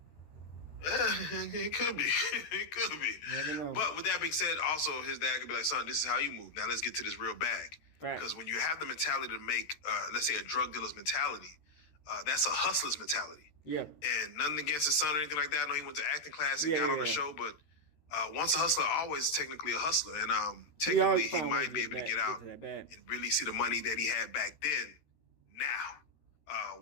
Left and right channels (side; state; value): right; late; 13 ms